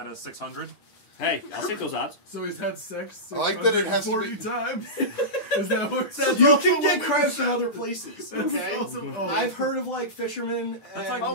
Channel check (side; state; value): right; late; 9.9 ms